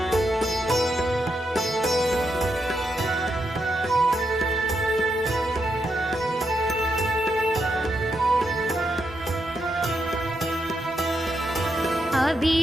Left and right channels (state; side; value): normal; both; correlation 0.82